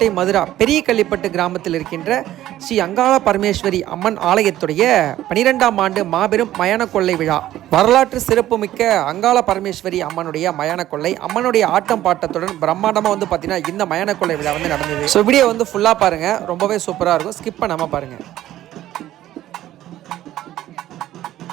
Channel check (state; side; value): quieter; left; 13.6 dB